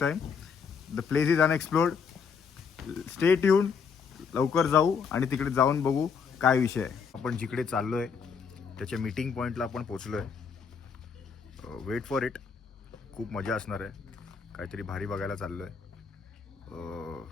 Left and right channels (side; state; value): right; quieter; 6.0 dB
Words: time. The place is unexplored. Stay tune. लवकर जाऊ आणि तिकडे जाऊन बघू काय विषय आहे. आपण जिकडे चाललोय त्याच्या मीटिंग पॉईंटला आपण पोचलोय. Weight for it. खूप मजा असणार आहे. काहीतरी भारी बघायला चाललोय.